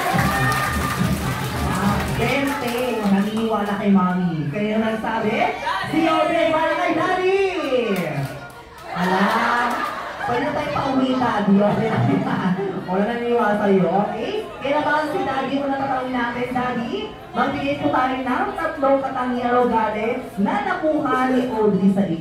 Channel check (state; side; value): identical; both; correlation 1.00